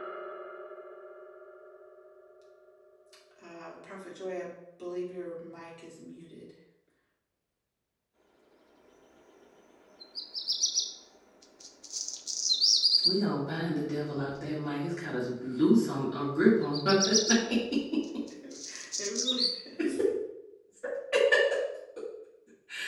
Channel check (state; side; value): identical; both; correlation 1.00